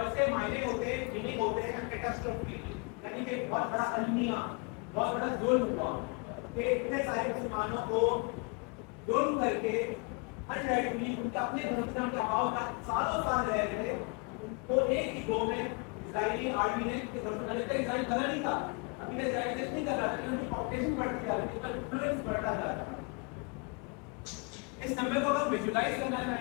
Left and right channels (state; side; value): quieter; right; 32.2 dB